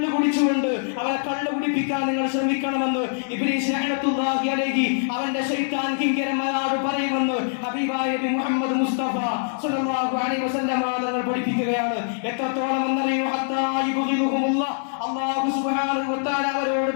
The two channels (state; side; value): silent; right; digital silence